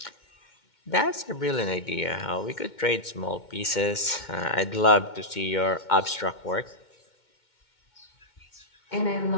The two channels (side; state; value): right; late; 2.2 ms